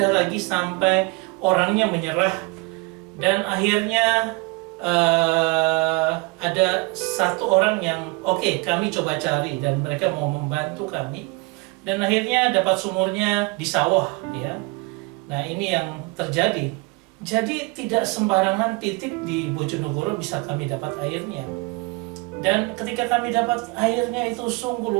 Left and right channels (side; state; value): left; quieter; 26.3 dB